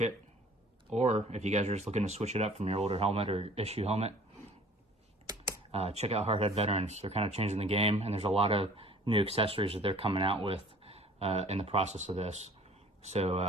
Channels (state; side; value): normal; both; correlation 0.51